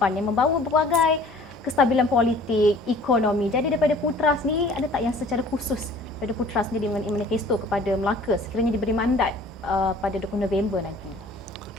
yang membawa berbagai kestabilan politik, ekonomi. Jadi daripada Putra sendiri, ada tak yang secara khusus daripada Putra sendiri mengenai manifesto kepada Melaka sekiranya diberi mandat pada 20 November nanti?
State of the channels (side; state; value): both; normal; correlation 0.51